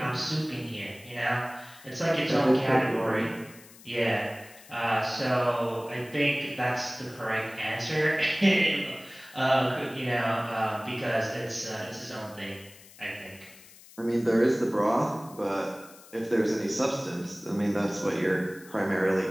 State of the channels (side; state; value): left; noise; hiss, 21 dB below the sound